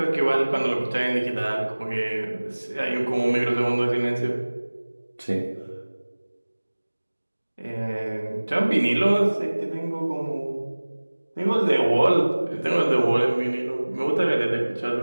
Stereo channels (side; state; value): both; inverted; correlation -1.00